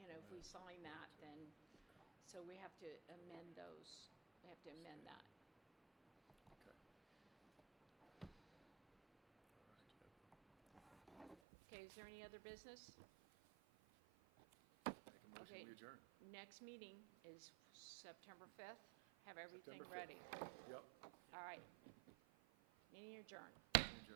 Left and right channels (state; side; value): drops out; left; at 11.4 s